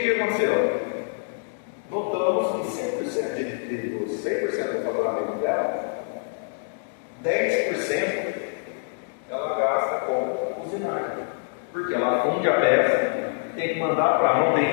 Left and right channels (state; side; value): silent; right; digital silence